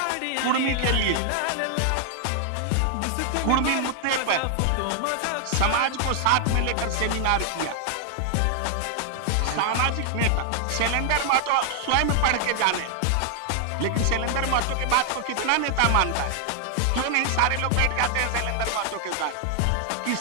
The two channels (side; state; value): both; different; correlation 0.00